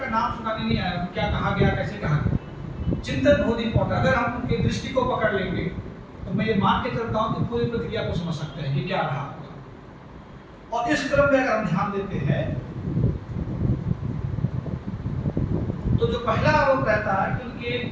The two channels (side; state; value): both; identical; correlation 1.00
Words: नाम सुनाने नहीं आया, क्या कहा गया, कैसे कहा गया। चिंतन बहुत इंपॉर्टेंट, अगर हम उनके दृष्टि को पकड़ लेंगे तो मैं ये मान के चलता हूँ कि पूरी प्रक्रिया को समझ सकते हैं कि क्या रहा। और इस क्रम में अगर हम ध्यान देते हैं तो जो पहला आरोप रहता है कि उनके